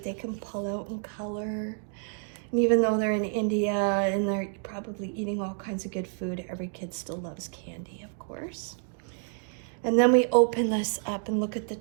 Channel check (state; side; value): silent; left; 59 dB below the other